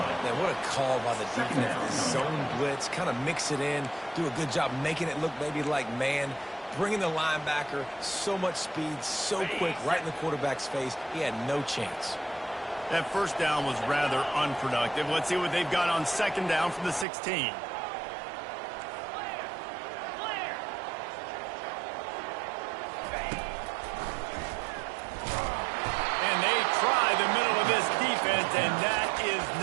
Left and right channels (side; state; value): left; drops out; at 17.1 s